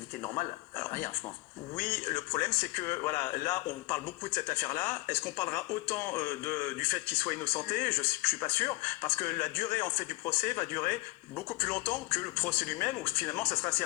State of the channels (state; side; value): quieter; right; 21.8 dB